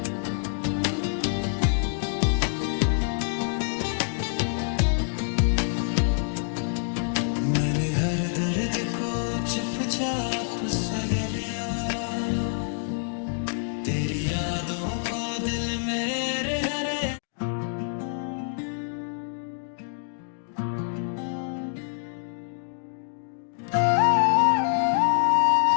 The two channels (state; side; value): silent; right; digital silence